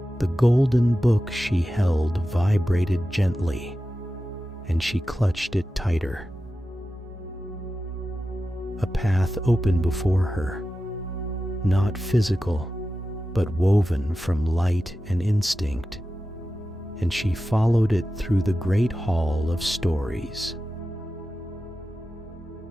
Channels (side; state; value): both; normal; correlation 0.93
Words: The golden book she held vibrated gently, and she clutched it tighter. A path opened before her, not physical, but woven from light and instinct, and she followed it through the great hall of stories.